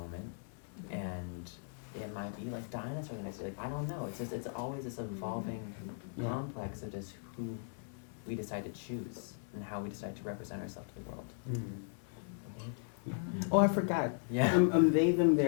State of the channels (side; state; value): right; silent; 53 dB below the other